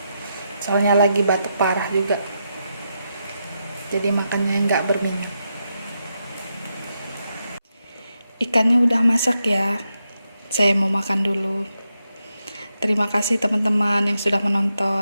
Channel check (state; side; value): inverted; both; correlation -0.85